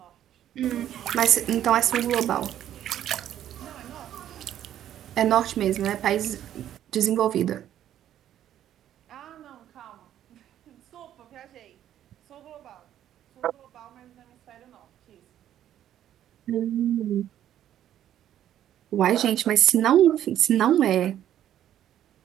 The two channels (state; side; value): quieter; left; 11.3 dB